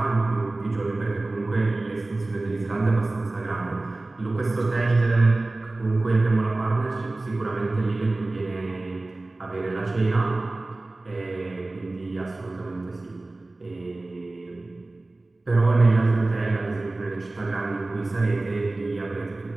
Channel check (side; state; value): left; quieter; 3.0 dB